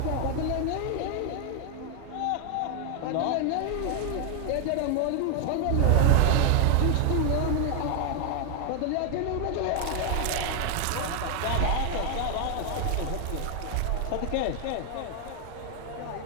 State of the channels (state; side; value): different; both; correlation 0.00